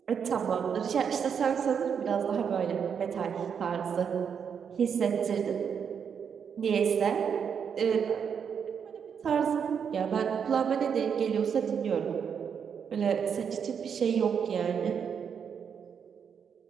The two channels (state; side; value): quieter; left; 7.2 dB